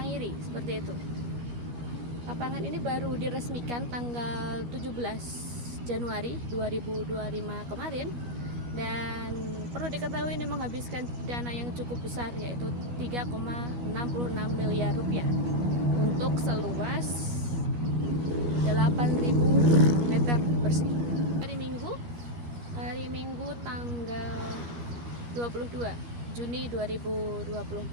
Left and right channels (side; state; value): left; late; 12 ms